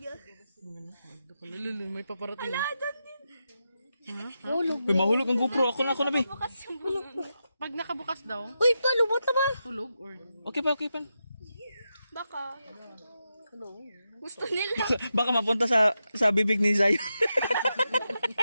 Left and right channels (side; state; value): both; inverted; correlation -0.88